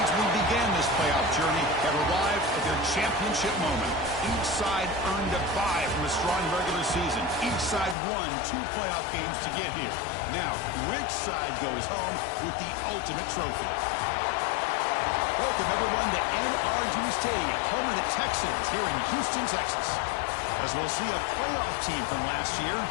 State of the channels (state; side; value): drops out; right; at 8.0 s